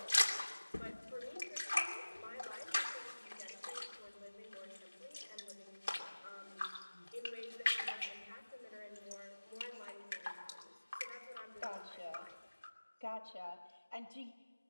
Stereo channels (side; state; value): both; inverted; correlation -1.00